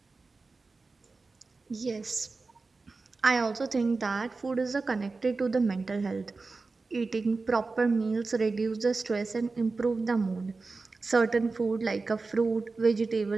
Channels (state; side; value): quieter; left; 3.9 dB